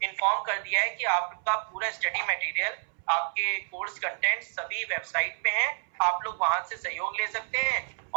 इन्फॉर्म कर दिया है कि आपका पूरा स्टडी मटेरियल, आपके कोर्स कंटेंट सभी वेबसाइट पे हैं, आप लोग वहां से सहयोग ले सकते हैं।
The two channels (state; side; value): silent; left; 58 dB below the other